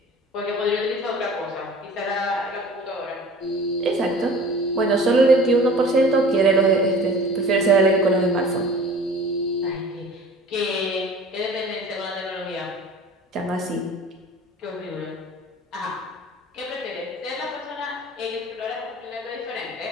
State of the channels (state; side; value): normal; both; correlation 0.44